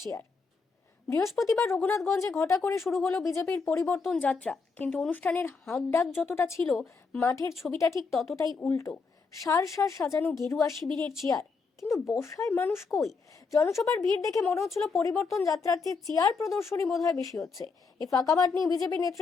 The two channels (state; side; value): quieter; right; 4.7 dB